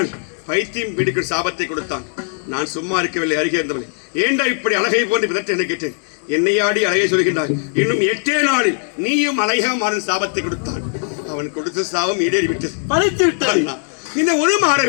பைத்தியம் பிடிக்கும் சாபத்தை கொடுத்தான். நான் சும்மா இருக்கவில்லை, அருகே இருந்தவளை ஏண்டா இப்படி அழகை போன்று பிதற்ற என்ன கேட்டேன். என்னையாடி அழகை சொல்கின்றாய். இன்னும் 8 நாளில் நீயும் அழகா மாறும் சாபத்தை கொடுத்தான். அவன் கொடுத்த சாபம் ஈடேறி விட்டது, பழித்து விட்டது. இந்த ஒரு மாற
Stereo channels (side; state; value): right; silent; 57 dB below the other